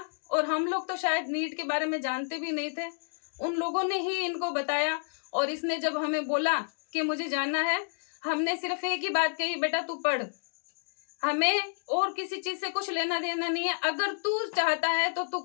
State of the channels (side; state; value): right; silent; digital silence